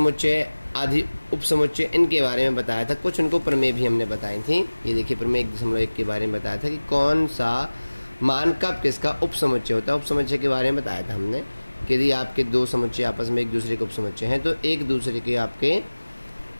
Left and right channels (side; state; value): both; inverted; correlation -1.00